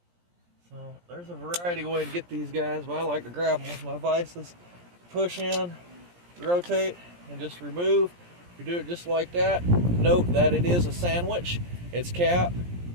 So there's a variety of ways to get these guys, but I like to grab them with my vices. Push in, rotate, and just remove. You do it just like that. Note that it is a sandwich. It's cap,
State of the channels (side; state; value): left; late; 17 ms